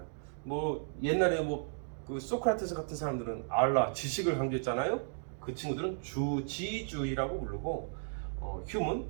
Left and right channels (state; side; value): silent; left; digital silence